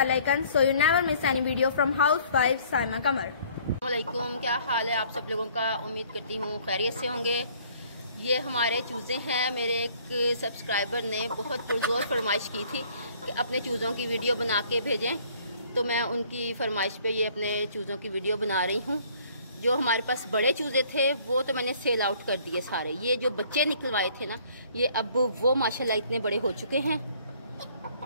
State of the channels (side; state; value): both; inverted; correlation -0.58